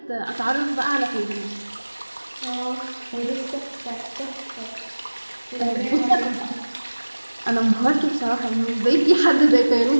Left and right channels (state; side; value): inverted; both; correlation -1.00